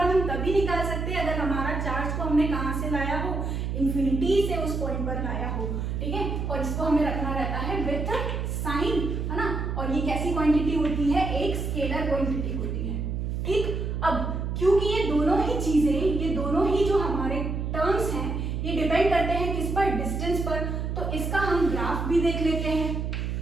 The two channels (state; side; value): noise; right; hum, 2 dB below the sound